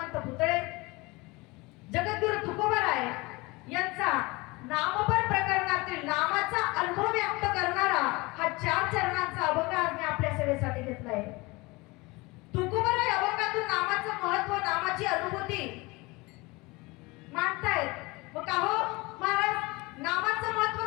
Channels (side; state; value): right; quieter; 24.0 dB